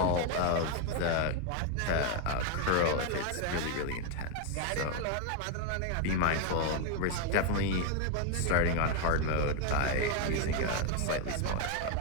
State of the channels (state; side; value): different; both; correlation 0.01